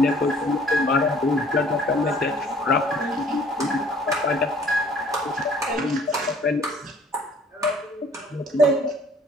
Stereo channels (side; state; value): both; normal; correlation 0.56